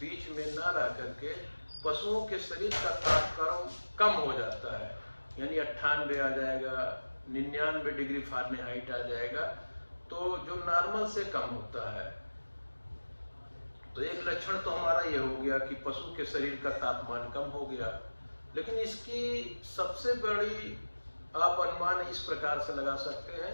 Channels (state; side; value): inverted; both; correlation -1.00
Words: में ना रह करके पशुओं के शरीर का तापक्रम कम हो जाता है, यानी 98 आ जाएगा, 99 डिग्री फ़ारेनहाइट आ जाएगा, तो जो नॉर्मल से कम होता है। तो एक लक्षण तो हमारा ये हो गया कि पशु के शरीर का तापमान कम हो गया। लेकिन इसकी सबसे बड़ी आप अनुमान इस प्रकार से लगा सकते हैं